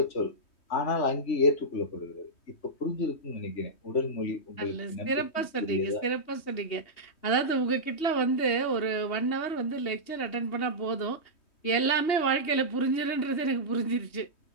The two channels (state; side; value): late; right; 3.2 ms